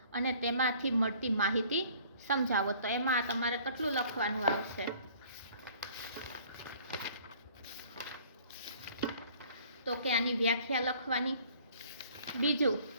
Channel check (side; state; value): both; inverted; correlation -0.54